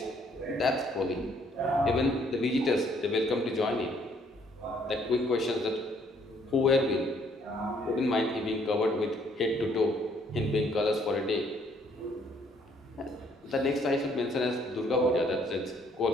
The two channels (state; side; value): normal; both; correlation 0.65